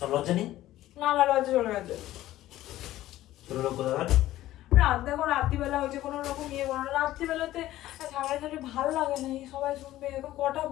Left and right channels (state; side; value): quieter; right; 14.8 dB